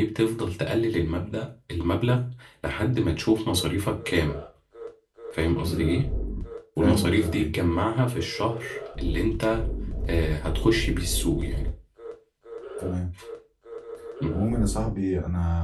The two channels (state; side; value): identical; both; correlation 1.00